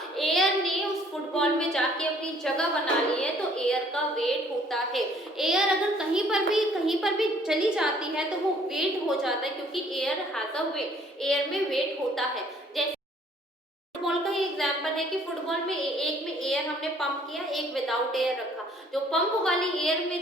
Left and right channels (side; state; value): both; normal; correlation 0.60